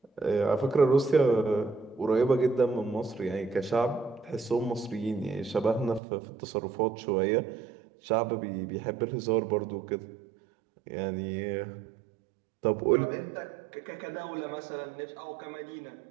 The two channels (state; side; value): drops out; left; at 6.0 s